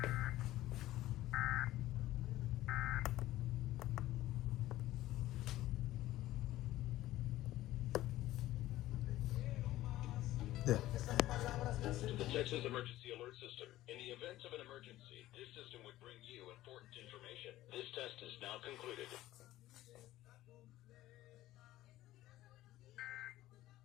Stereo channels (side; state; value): right; quieter; 15.4 dB